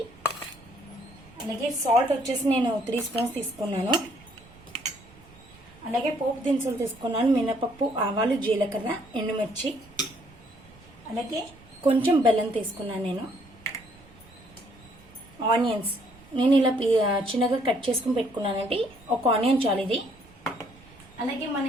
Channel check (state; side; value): noise; right; rumble, 24 dB below the sound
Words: అలాగే సాల్ట్ వచ్చేసి నేను 3 స్పూన్స్ తీసుకున్నాను. అలాగే పోపు దినుసులు తీసుకున్నాను. మినపప్పు, ఆవాలు, జీలకర్ర, ఎండుమిర్చి, అలాగే కొంచెం బెల్లం తీసుకున్నాను. నేను ఆనియన్స్ నేను ఇలా చిన్నగా కట్ చేసుకుని పెట్టుకున్నానండి. ఒక ఆనియన్ చాలు ఇది. అలాగే మన